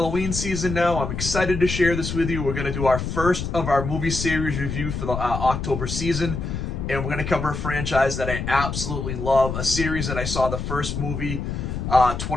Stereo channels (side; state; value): left; noise; rumble, 4 dB below the sound